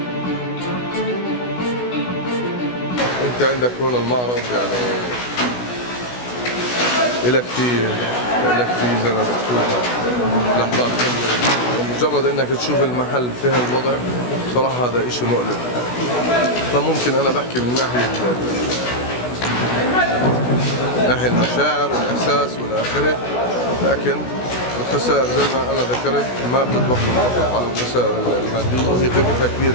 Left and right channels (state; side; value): late; right; 16 ms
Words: انت عندك هون المعرض يعني إلك فيه زي ما بتشوفها لحظات مجرد انك تشوف المحل في هالوضع صراحة هذا اشي مؤلم. فممكن انا بحكي من ناحية المشاعر والاحساس والاخره، لكن الخسائر زي ما انا ذكرت ما بتطبق فقط على الخسائر المادية، هي قيمتها كبيرة